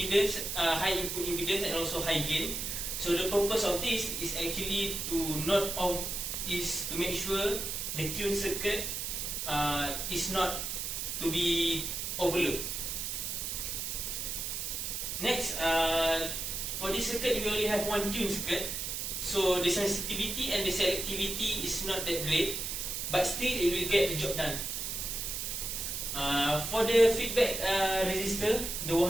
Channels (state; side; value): noise; right; hiss, 3 dB below the sound